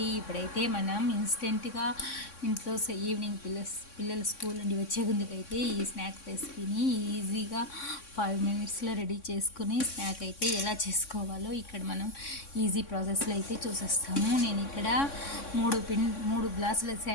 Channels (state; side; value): late; right; 3.6 ms